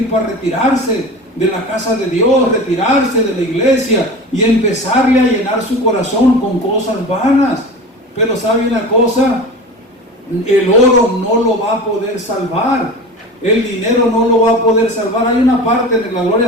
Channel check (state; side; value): normal; both; correlation 0.33